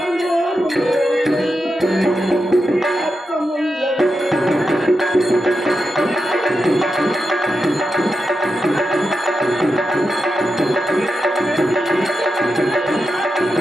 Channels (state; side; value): normal; both; correlation 0.88